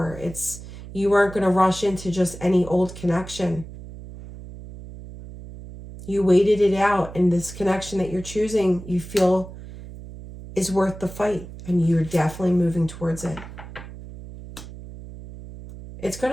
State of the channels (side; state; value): right; noise; hum, 14 dB below the sound